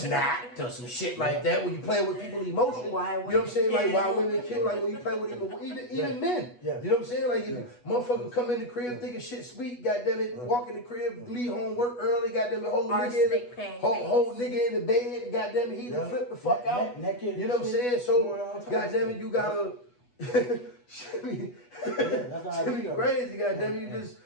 or some shit like that. When you playing with people's emotions, you know what I'm saying? Like why women kill, like when you play with even men. You know what I'm saying? Like if motherfucker come in the crib thinking shit sweet, goddamn it, walk in the crib, leave home, work early, goddamn it, whole nigga in the bed, goddamn it, he done flip the fuck out. Naked, you know what I'm saying? So goddamn it, you gotta shit be crazy, goddamn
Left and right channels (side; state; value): right; late; 8.2 ms